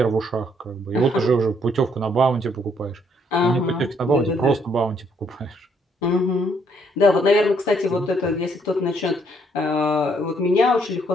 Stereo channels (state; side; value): normal; both; correlation 0.69